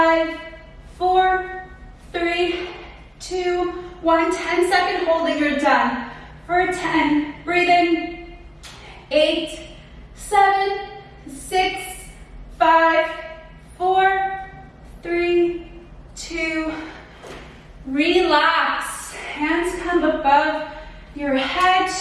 4, 3, 2, 1. 10-second holding, you're done. For 10, breathing. 8, 7, 6, 5, 4, 3, 2, relax. Hands come above your head,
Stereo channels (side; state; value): both; identical; correlation 1.00